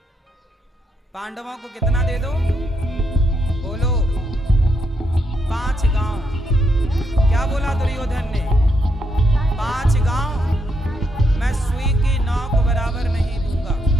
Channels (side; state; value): both; normal; correlation 0.79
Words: पांडवों को कितना दे दो? बोलो, 5 गांव। क्या बोला दुर्योधन ने? 5 गांव मैं सुई की नौक बराबर नहीं दूंगा।